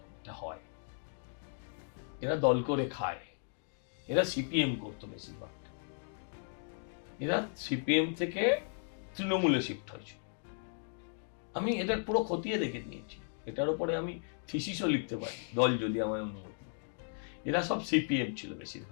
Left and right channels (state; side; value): silent; right; digital silence